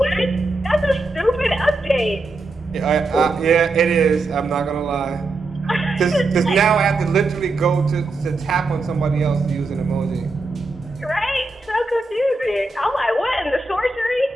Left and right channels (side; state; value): left; quieter; 3.2 dB